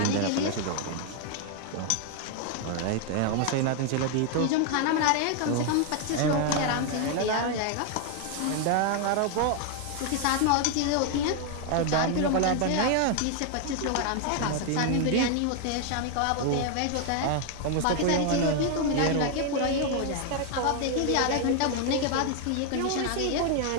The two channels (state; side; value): different; both; correlation 0.00